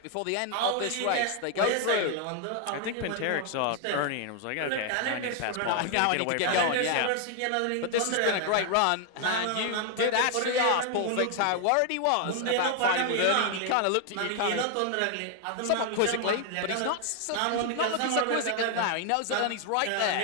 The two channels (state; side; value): different; both; correlation 0.00